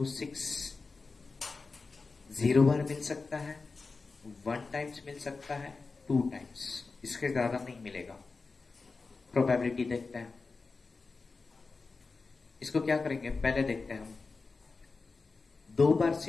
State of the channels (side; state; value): right; quieter; 4.1 dB